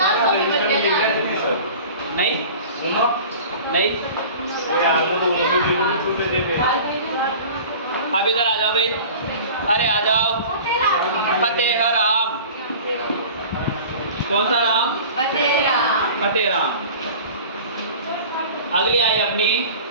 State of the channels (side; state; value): both; inverted; correlation -0.40